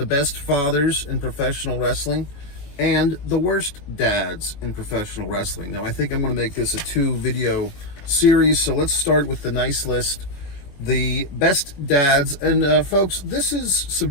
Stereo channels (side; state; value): right; late; 21 ms